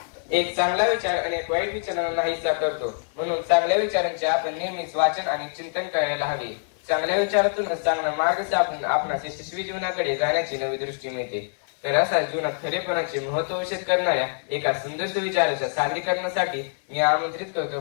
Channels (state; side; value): silent; right; 62 dB below the other